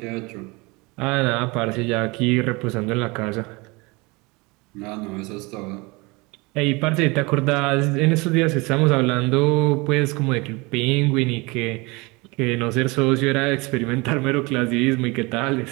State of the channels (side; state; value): left; quieter; 25.7 dB